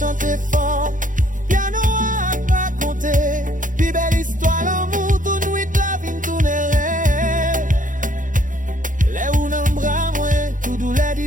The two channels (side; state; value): left; late; 0.38 ms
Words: fort, piano à raconter. Puis belle histoire l'amour, tout nuit la vie tout n'est. Les où n'en bras moi, tout douleur